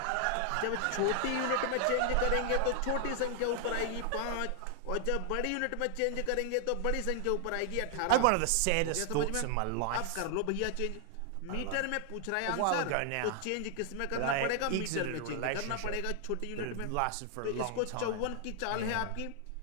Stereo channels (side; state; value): both; different; correlation 0.00